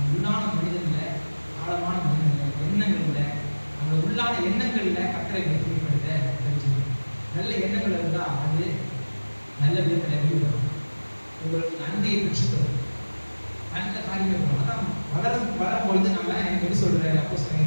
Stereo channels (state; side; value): inverted; both; correlation -1.00